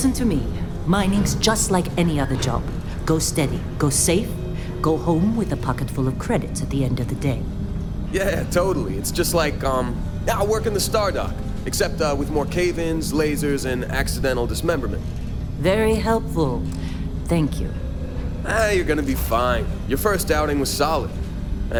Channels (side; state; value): both; identical; correlation 1.00